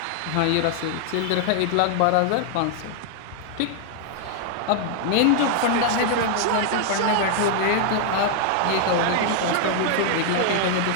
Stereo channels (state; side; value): different; both; correlation 0.00